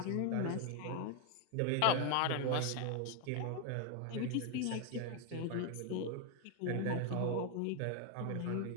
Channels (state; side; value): different; both; correlation 0.01